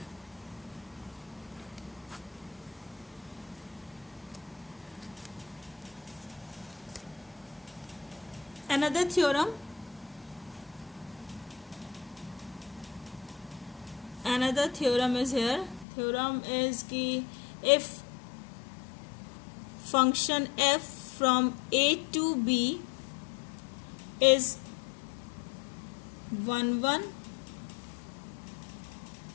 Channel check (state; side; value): drops out; right; at 15.9 s